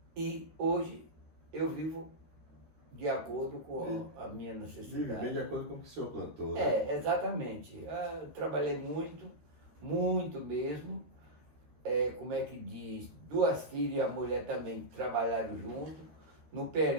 e hoje eu vivo de acordo com a minha necessidade. Vive bem de acordo com o que o senhor plantou. Né? Exatamente. Eu trabalhei muito, muito mesmo. Como é que diz? 2 filhas e a mulher também trabalharam junto. No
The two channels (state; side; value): late; left; 13 ms